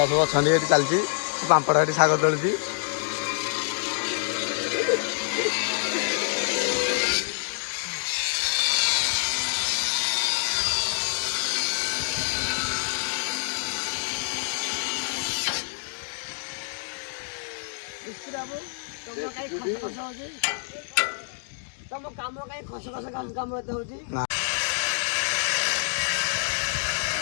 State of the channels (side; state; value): right; silent; digital silence